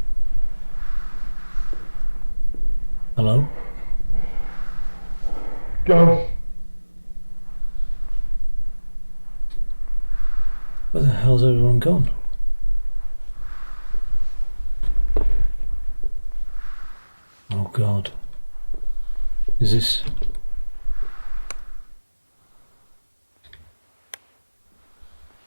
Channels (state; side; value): inverted; both; correlation -1.00